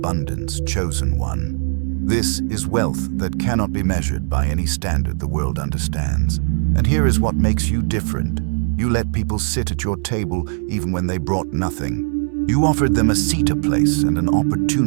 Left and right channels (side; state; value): left; silent; digital silence